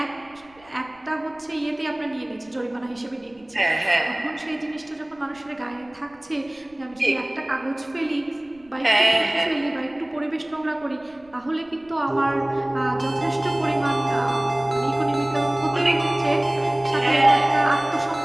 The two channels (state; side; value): noise; right; rumble, 30 dB below the sound